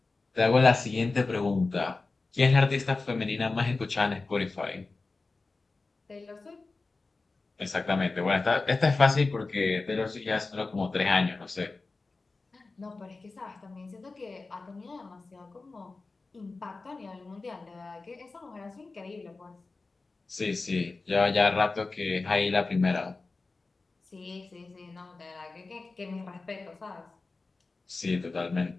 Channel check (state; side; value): quieter; right; 3.7 dB